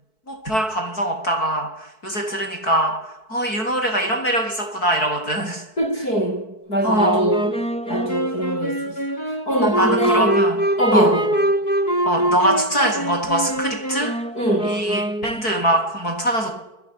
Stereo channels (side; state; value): right; late; 4.6 ms